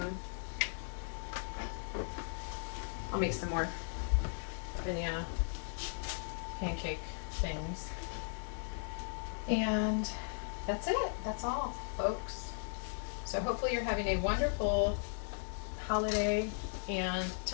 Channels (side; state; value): right; silent; digital silence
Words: I'll make some more banana pancake things. And that's it. That's all, folks. So hopefully you're having a wonderful holiday. And